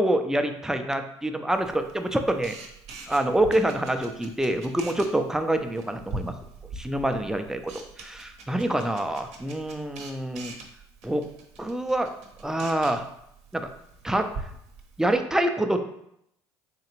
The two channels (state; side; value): normal; both; correlation 0.85